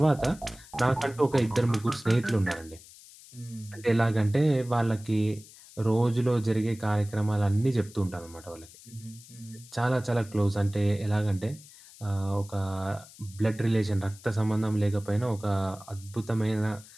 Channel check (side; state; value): left; noise; hiss, 21 dB below the sound